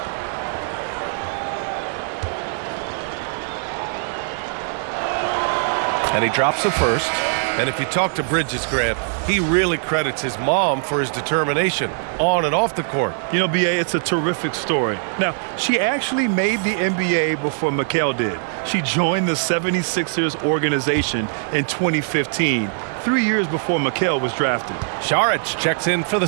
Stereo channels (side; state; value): left; silent; digital silence